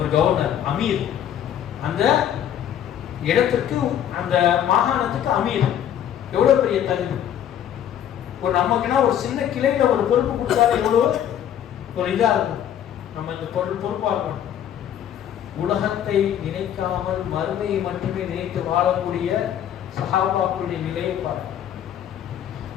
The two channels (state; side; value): quieter; right; 10.2 dB